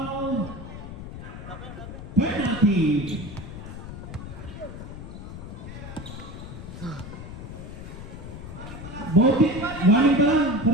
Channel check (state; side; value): noise; left; rumble, 10 dB below the sound